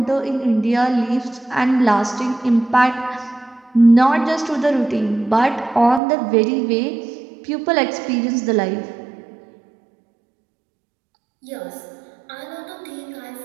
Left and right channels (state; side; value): drops out; left; at 6.0 s